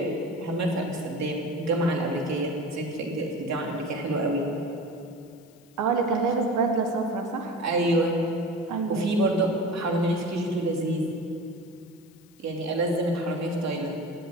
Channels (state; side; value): noise; left; hiss, 29 dB below the sound